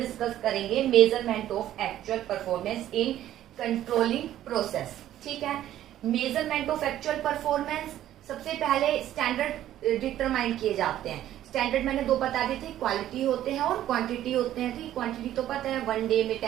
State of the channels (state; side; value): quieter; left; 12.5 dB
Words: करेंगे, measurement of actual performance in controlling process. ठीक है, मेजरमेंट ऑफ एक्चुअल परफॉर्मेंस. सबसे पहले स्टैंडर्ड डिटरमाइन किए जाते हैं. स्टैंडर्ड मैंने दो बता दिए थे, क्वालिटी होते हैं और क्वांटिटी होते हैं. ठीक, क्वांटिटी तो पता है, 1 डे में